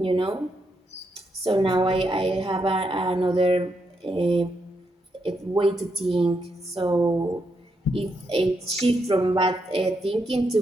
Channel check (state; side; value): normal; both; correlation 0.81